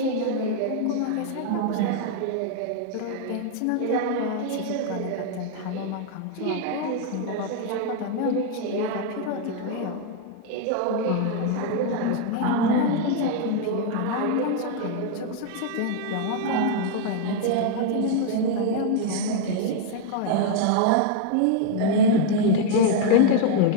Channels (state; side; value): different; both; correlation 0.00